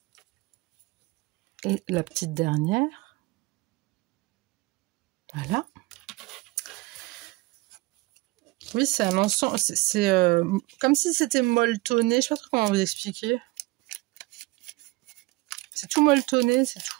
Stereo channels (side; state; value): left; quieter; 22.8 dB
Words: Et la petite dernière. Voilà. Oui, c'est un ensemble. C'est comme si c'était molletonné. Je sais pas trop comment vous expliquer. C'est tout molletonné, c'est